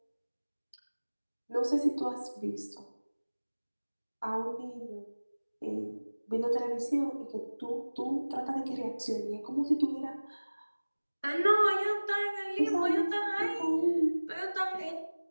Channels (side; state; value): both; inverted; correlation -1.00